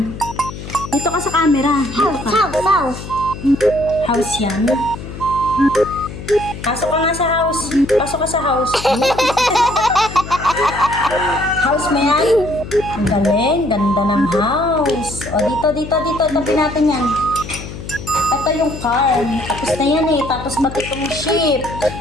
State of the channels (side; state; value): left; noise; hum, 11 dB below the sound